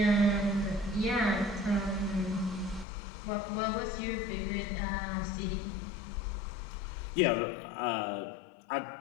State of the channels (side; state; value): right; drops out; at 2.9 s